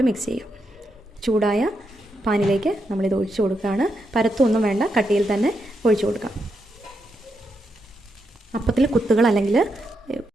മിക്സ് ചെയ്യാം. ചൂടായ പാനിലേക്ക് നമ്മളിത് ഒഴിച്ചു കൊടുക്കുകയാണ്. പരത്തൊന്നും വേണ്ട, കട്ടിയിൽ തന്നെ ഒഴിച്ചു കൊടുക്കാം. അപ്പത്തിൽ കുത്തുകൾ അല്ലെങ്കിൽ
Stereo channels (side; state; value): both; normal; correlation 0.83